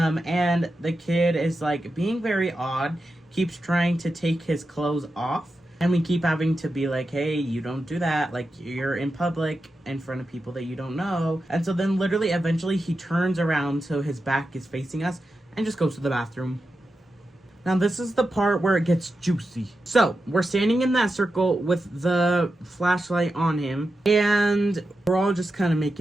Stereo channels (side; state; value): both; normal; correlation 0.90